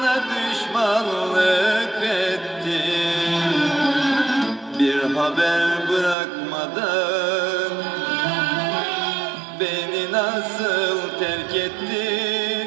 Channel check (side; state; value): left; drops out; at 6.2 s